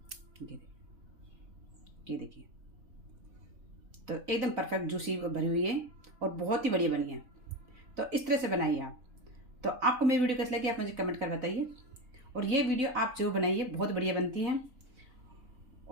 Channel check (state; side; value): late; left; 3.9 ms